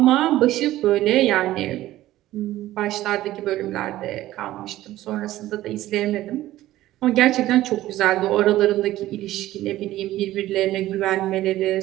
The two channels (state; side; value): quieter; left; 15.1 dB